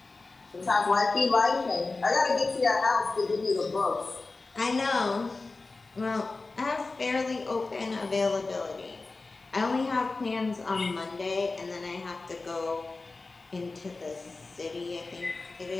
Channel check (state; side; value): quieter; right; 3.6 dB